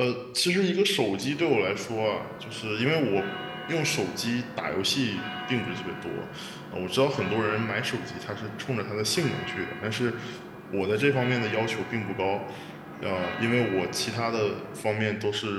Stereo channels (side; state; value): both; identical; correlation 1.00